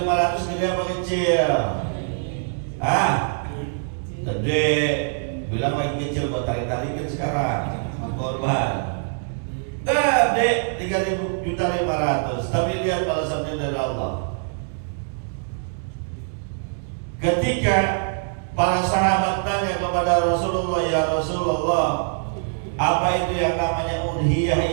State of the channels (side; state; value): left; silent; digital silence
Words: gede apa kecil? Ah, gede. Bilang lagi kecil, kok tarik-tarikin sekarang korban. Gede 3.500.000. Tapi lihat balasannya dari Allah. Ketika para sahabat tanya kepada Rasulullah, ya Rasulullah, apa itu yang namanya